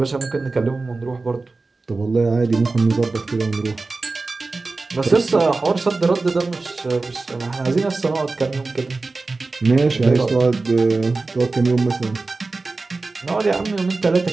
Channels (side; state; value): left; quieter; 3.6 dB